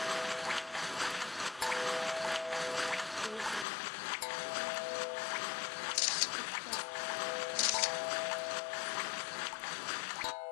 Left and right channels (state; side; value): drops out; right; at 3.7 s